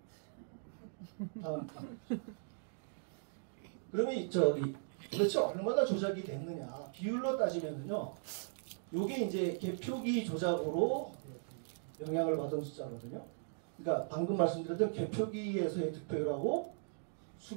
다음. 그러면 도대체 얼마나 조작이 됐느냐. 비율로 따지면요. 요게 이제 개표기 조작으로 영향을 받은 숫자거든요. 그러니까 방금 말씀드렸던 개표기에서의 득표율하고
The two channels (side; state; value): left; silent; digital silence